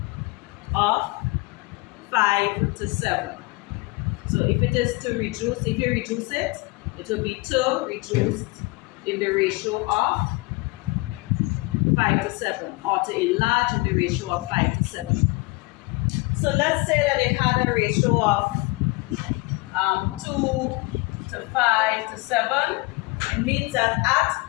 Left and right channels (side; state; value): right; quieter; 24.7 dB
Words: of 5 to 7. So if it is to reduce, if you reduce it, it will be to reduced in the ratio of 5 to 7, or to enlarge in the ratio of 5 to 7. So let's say that they had a ratio of 2 to 5 to 7. It means that